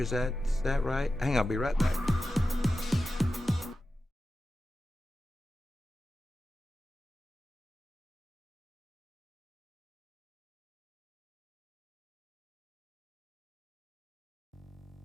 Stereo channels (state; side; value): normal; both; correlation 0.93